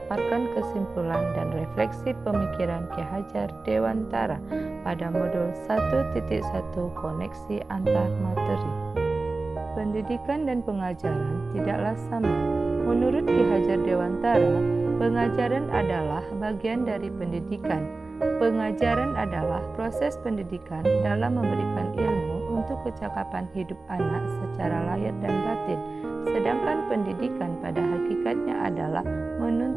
kesimpulan dan refleksi pemikiran Ki Hajar Dewantara pada modul 1.1 koneksi antar materi. Pendidikan dan pengajaran tidaklah sama. Menurut Ki Hajar Dewantara, pengajaran adalah bagian dari pendidikan. Pengajaran adalah proses pendidikan dalam memberikan ilmu untuk kecakapan hidup anak secara lahir dan batin. Sedangkan pendidikan pada hakikatnya adalah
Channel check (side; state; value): left; quieter; 3.5 dB